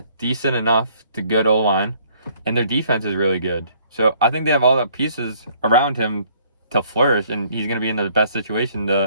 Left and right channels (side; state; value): both; inverted; correlation -0.62